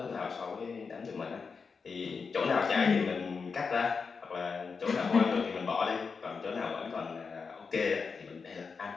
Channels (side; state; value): right; quieter; 5.2 dB